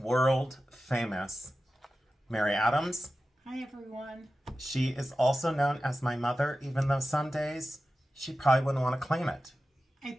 famous Mary Adams. Hi, everyone. She is also known as my mother, even though some days she probably wouldn't want to claim it. I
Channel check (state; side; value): normal; both; correlation 0.94